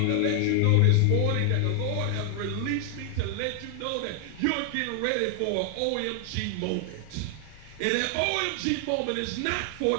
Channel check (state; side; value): different; both; correlation 0.00